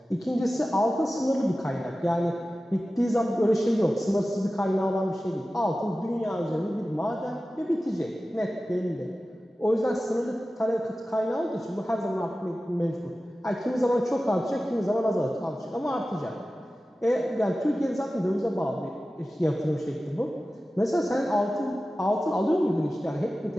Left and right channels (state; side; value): normal; both; correlation 0.95